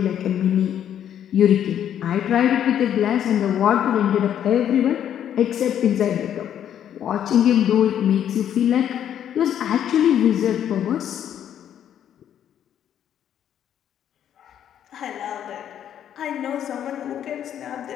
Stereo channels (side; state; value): right; quieter; 9.9 dB